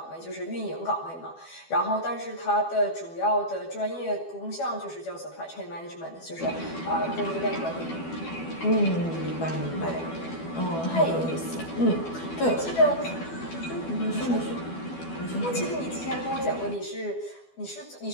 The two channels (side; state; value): right; late; 12 ms